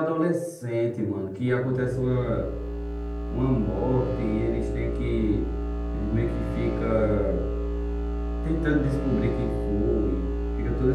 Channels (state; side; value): identical; both; correlation 1.00